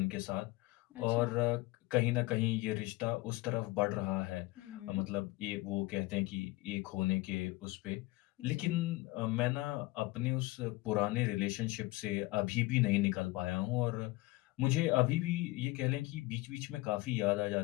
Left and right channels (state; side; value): quieter; right; 20.7 dB